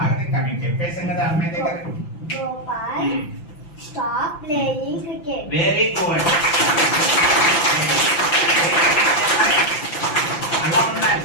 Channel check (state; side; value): late; right; 5.9 ms